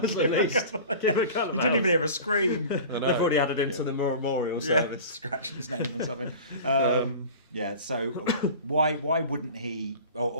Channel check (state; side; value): inverted; both; correlation -0.37